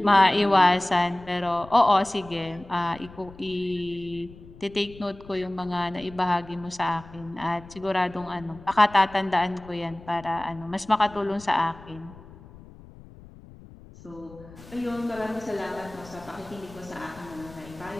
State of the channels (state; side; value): noise; left; rumble, 19 dB below the sound